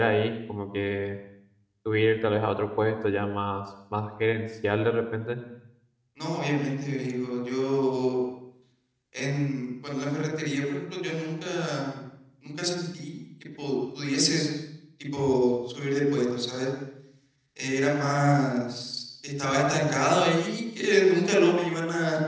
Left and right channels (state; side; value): identical; both; correlation 1.00